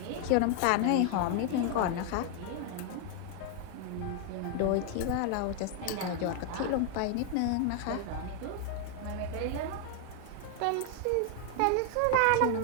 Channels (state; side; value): different; both; correlation 0.00